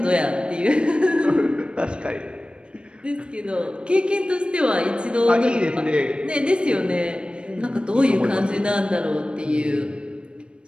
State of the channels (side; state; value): left; late; 0.056 ms